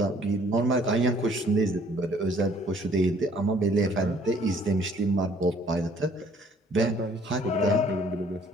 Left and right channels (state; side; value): normal; both; correlation 0.59